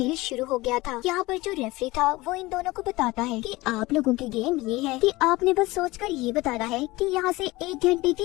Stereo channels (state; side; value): quieter; right; 20.6 dB